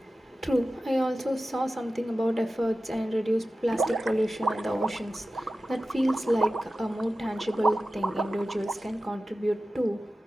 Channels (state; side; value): normal; both; correlation 0.94